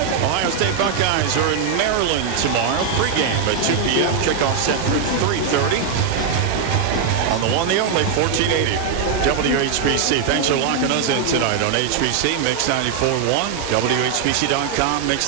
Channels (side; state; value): left; quieter; 6.7 dB